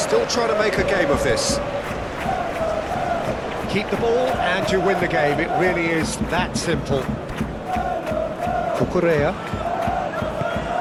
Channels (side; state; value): both; identical; correlation 1.00